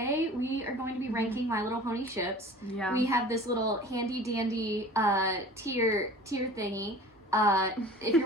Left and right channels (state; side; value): normal; both; correlation 0.43